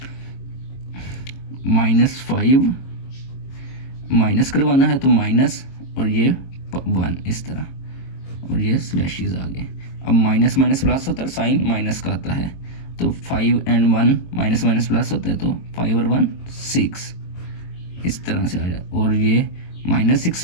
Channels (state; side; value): late; right; 22 ms